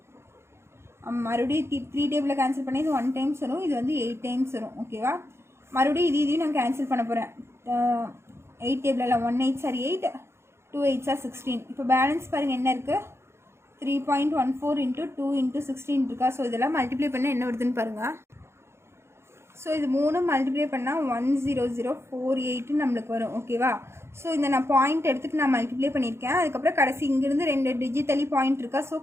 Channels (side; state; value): left; late; 0.12 ms